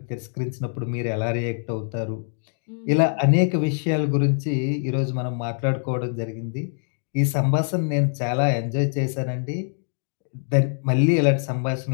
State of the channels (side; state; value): right; silent; digital silence